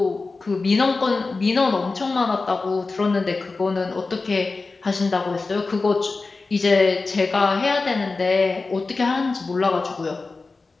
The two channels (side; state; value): right; quieter; 3.8 dB